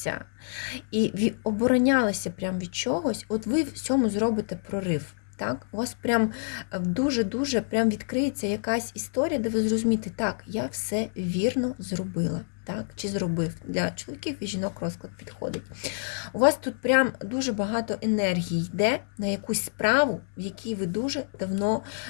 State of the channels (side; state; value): right; silent; 60 dB below the other